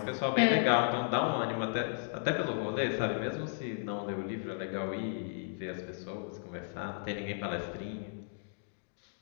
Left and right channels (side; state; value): right; silent; digital silence